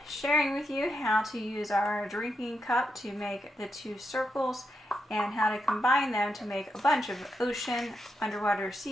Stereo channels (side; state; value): both; normal; correlation 0.84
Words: sharing with you how to use our drinking cup to make the two circles and how to combine them to make a bunch of ocean, underwater